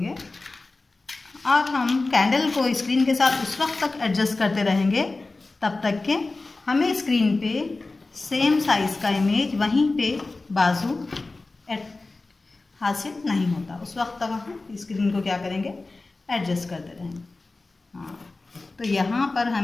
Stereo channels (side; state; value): right; quieter; 3.4 dB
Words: और हम कैंडल को स्क्रीन के साथ उस वक्त तक एडजस्ट करते रहेंगे तब तक के हमें स्क्रीन पे सेम साइज़ का इमेज वहीं पे बाजू हासिल नहीं होता। उस वक्त तक हम स्क्रीन को क्या करेंगे, एडजस्ट करते रहेंगे। हाँ, तो यहाँ पर